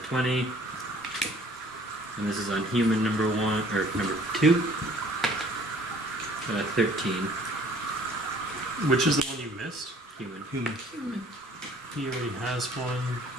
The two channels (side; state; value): both; normal; correlation 0.55